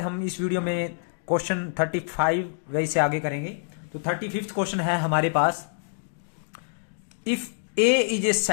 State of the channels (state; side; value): silent; right; digital silence